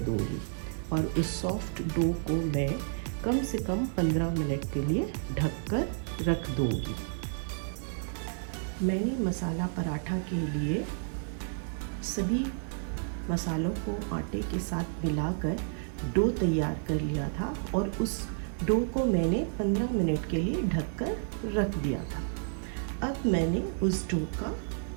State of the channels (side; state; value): left; silent; digital silence